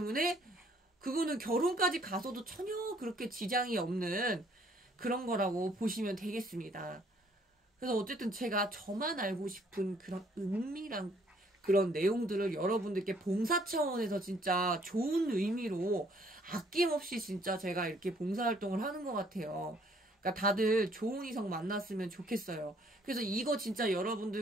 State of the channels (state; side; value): normal; both; correlation 0.63